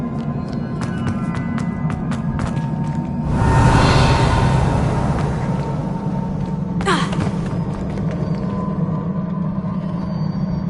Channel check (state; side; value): identical; both; correlation 1.00